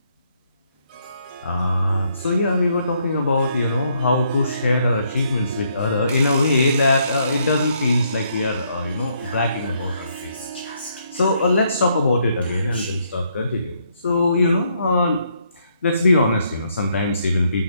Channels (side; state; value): both; inverted; correlation -0.73